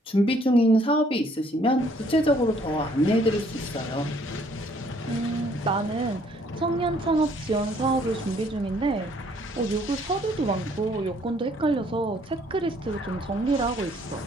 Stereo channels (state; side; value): normal; both; correlation 0.63